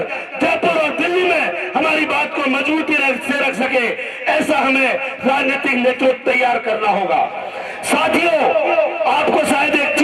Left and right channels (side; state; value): both; identical; correlation 1.00